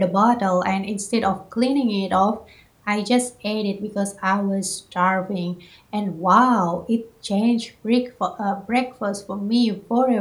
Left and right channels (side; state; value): both; identical; correlation 1.00